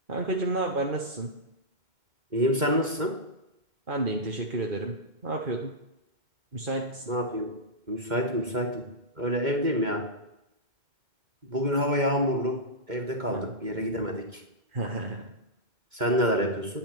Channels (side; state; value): left; late; 2.2 ms